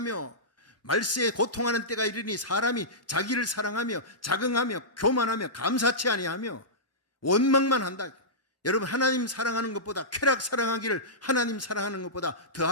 말세에 고통하는 때가 이르니 사람이 자기를 사랑하며 자긍하며 교만하며 감사치 아니하며 원망만 한다. 여러분, 하나님 사랑하는 것보다 쾌락 사랑하기를 하나님 사랑하는 것보다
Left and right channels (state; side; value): normal; both; correlation -0.15